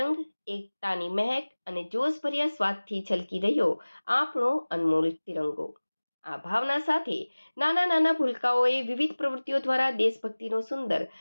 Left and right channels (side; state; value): both; inverted; correlation -1.00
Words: એકતાની મહેક અને જોશભર્યા સ્વાદથી છલકી રહ્યો આપણો અનમોલ તિરંગો. આ ભાવના સાથે નાના નાના ભૂલકાઓએ વિવિધ પ્રવૃત્તિઓ દ્વારા દેશભક્તિનો સુંદર